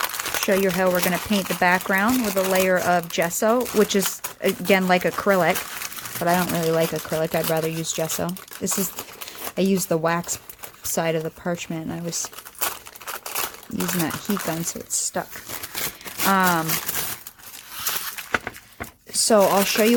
show you how we're going to paint the background with a layer of gesso, which is, again, like acrylic, but I don't really like acrylic. I'd rather use gesso. I used the wax side of the parchment, and I was using that heat gun, so it's stuck. So I'll show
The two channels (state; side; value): identical; both; correlation 1.00